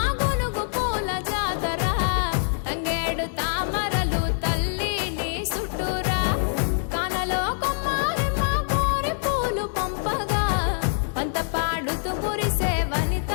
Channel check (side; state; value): right; silent; digital silence